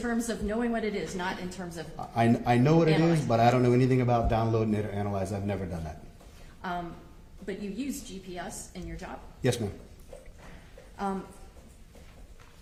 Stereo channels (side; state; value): both; identical; correlation 1.00